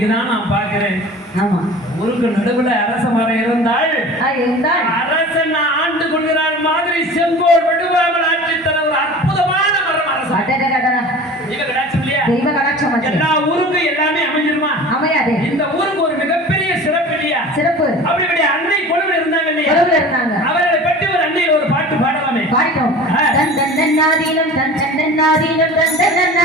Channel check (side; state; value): both; normal; correlation 0.39